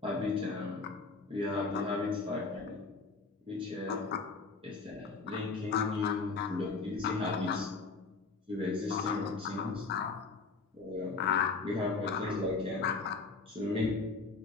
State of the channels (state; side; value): quieter; right; 4.3 dB